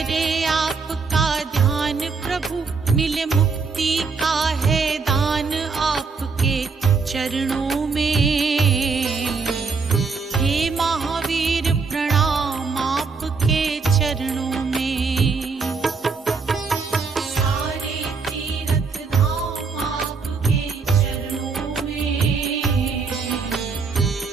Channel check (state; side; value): quieter; left; 4.8 dB